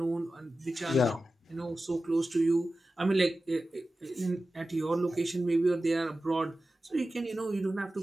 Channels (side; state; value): both; normal; correlation 0.94